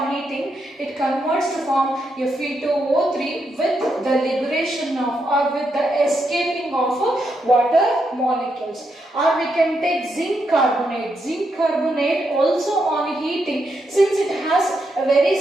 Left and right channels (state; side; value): normal; both; correlation 0.81